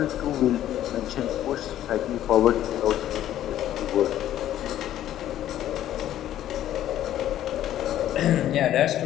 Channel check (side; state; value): right; quieter; 12.2 dB